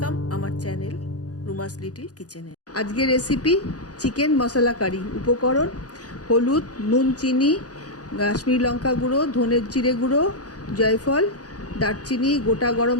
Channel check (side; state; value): right; late; 0.68 ms